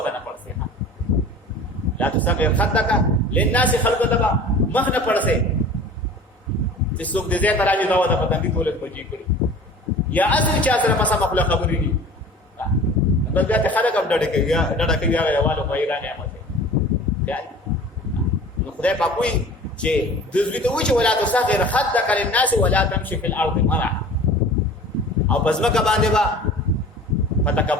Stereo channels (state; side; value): normal; both; correlation 0.42